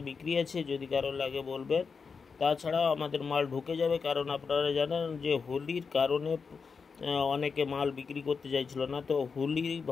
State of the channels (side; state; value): right; quieter; 5.3 dB